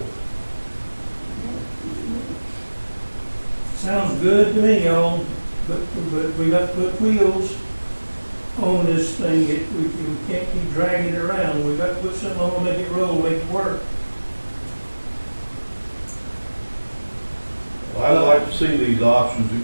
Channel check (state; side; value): inverted; both; correlation -1.00